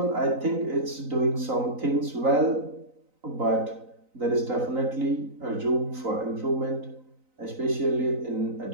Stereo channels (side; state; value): left; late; 3.9 ms